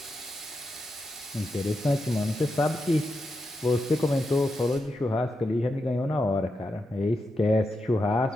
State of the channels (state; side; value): normal; both; correlation 0.87